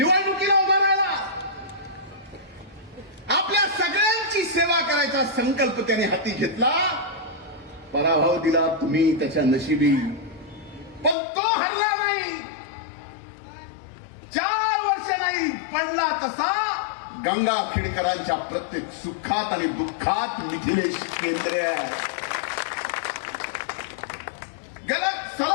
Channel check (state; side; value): drops out; right; at 11.2 s